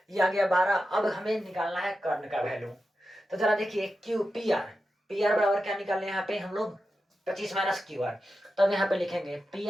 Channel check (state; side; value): normal; both; correlation 0.90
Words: ये आ गया 12। अब हमें निकालना है कर्ण का वैल्यू। तो जरा देखिए क्यू पी आर बराबर क्या निकालने यहाँ पे हम लोग, 25 माइनस क्यू आर। तो अब यहाँ पे लिखेंगे पी